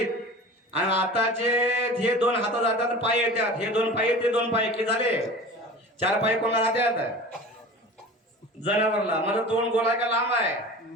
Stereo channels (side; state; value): both; normal; correlation 0.37